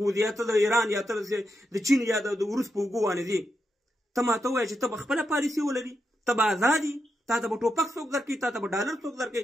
ځې، یا ته د ایران، یا ته د چین یا د روس په اوږو باندې ځې. ته ماته ووایه چې ته به خپله پالیسي ولري، ته به ازاد یې، تا ته به ټوپک څوک درکوي، تا ته به ډالر څوک درکوي،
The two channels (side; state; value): both; normal; correlation 0.85